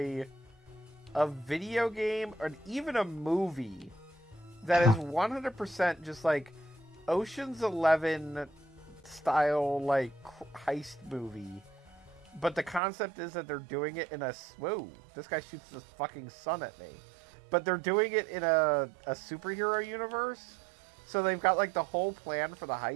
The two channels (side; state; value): left; drops out; at 12.8 s